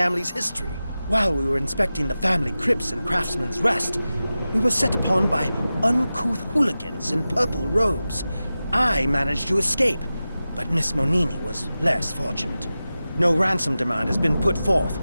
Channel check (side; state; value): both; inverted; correlation -0.95